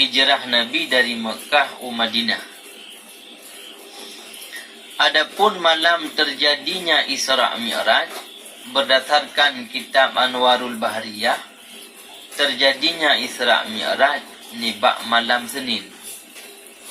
Nabi dari Mekah ke Madinah. Adapun malam terjadinya Isra' Mi'raj, berdasarkan kitab Anwarul Bahriyah, terjadinya Isra' Mi'raj nibak malam Senin.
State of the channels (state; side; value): identical; both; correlation 1.00